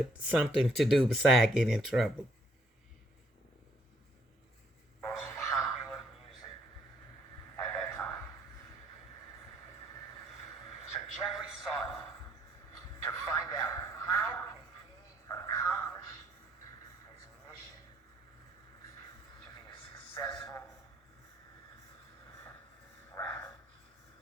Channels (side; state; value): both; normal; correlation 0.67